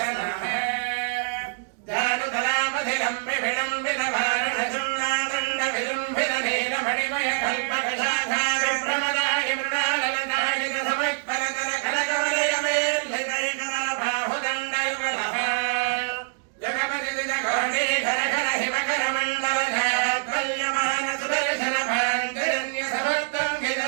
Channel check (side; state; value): left; silent; digital silence